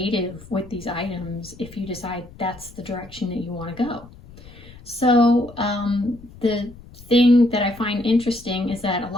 with these items if you decide that's the direction that you want to go. So the thing that I find interesting is that a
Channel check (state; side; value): noise; left; rumble, 20 dB below the sound